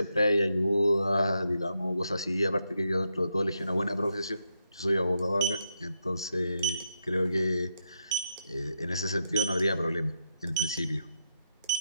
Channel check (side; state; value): both; inverted; correlation -0.81